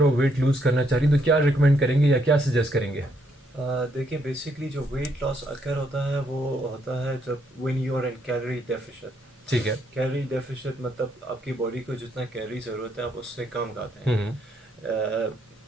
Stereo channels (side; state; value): both; normal; correlation 0.73